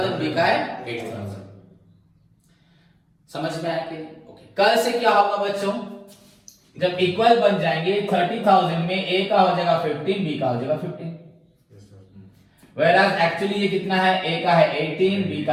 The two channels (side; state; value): both; identical; correlation 1.00